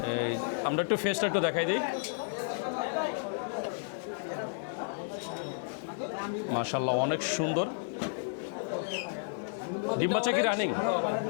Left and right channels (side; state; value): right; silent; digital silence